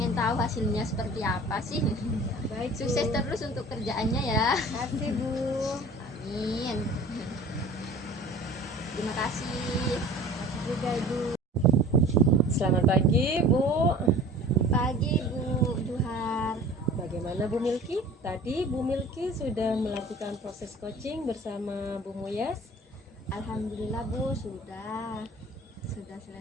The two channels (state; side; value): normal; both; correlation 0.44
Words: tahu hasilnya seperti apa sih. Baik, Bu. Sukses terus untuk kerjaannya ya. Terima kasih, Bu. Amin. Terima kasih. Juga, Ibu. Selamat pagi Bu. Pagi Bu Juhar. Bagaimana Bu Milky? Tadi Bu Milky sudah melakukan proses coaching bersama Bu Muyas. Alhamdulillah Bu, sudah